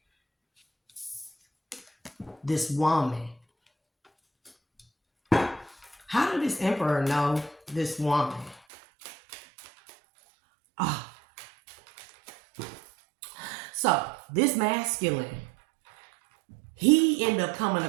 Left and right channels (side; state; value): left; drops out; at 8.6 s